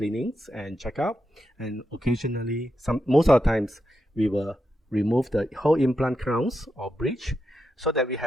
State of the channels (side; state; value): both; normal; correlation 0.85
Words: and checkup, and occasionally, most of the times, we will remove the whole implant crowns or bridge so that we